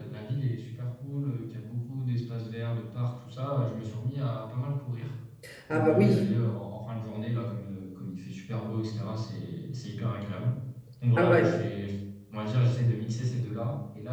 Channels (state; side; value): identical; both; correlation 1.00